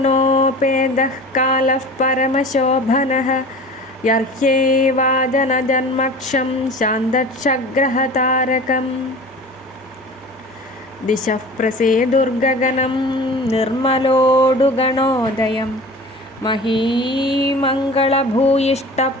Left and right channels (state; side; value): normal; both; correlation 0.39